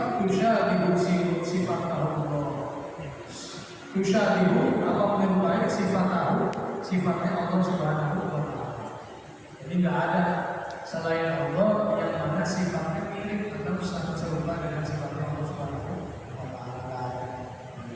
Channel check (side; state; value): both; identical; correlation 1.00